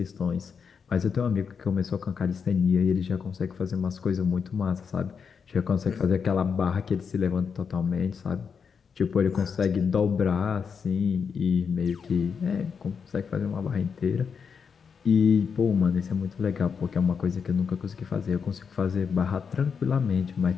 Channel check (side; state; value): right; quieter; 6.2 dB